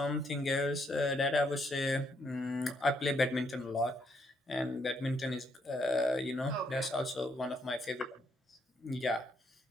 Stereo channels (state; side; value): normal; both; correlation 0.73